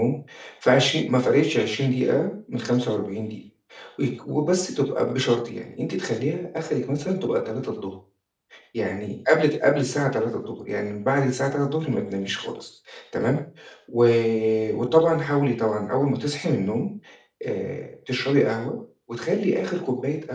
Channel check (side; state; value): both; identical; correlation 1.00